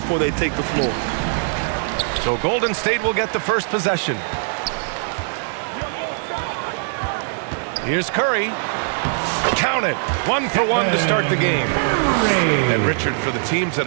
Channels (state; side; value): silent; left; 65 dB below the other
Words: they take the floor. So Golden State will get the first possession. Here's Curry. Count it. 1 for 1 to start the game. And Richard, for the teams that